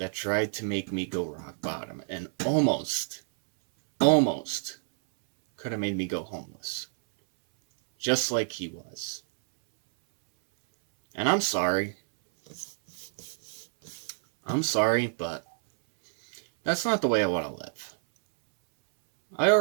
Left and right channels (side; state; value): left; silent; 59 dB below the other